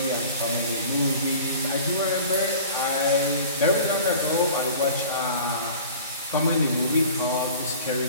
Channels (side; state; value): both; inverted; correlation -0.43